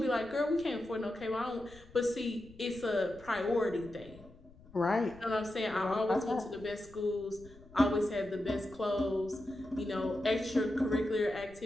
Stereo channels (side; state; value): left; noise; rumble, 22 dB below the sound